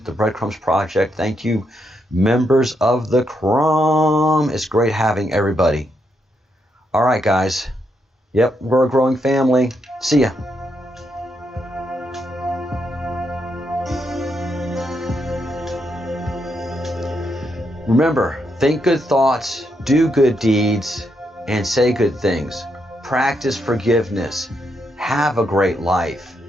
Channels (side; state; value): both; normal; correlation 0.79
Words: the Breadcrumbs Project. Thank you, members of the Crumb. It's great having everybody. All right, guys. Yep, we're a growing family. See ya. Remember, think good thoughts, do good deeds, and say good things. Practice forgiveness. Have a great life.